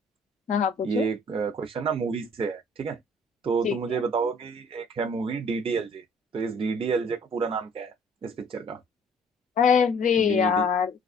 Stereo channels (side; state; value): both; normal; correlation 0.56